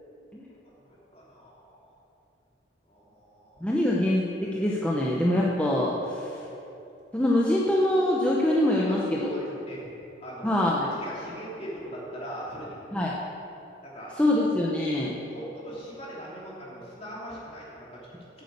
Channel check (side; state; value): both; normal; correlation 0.70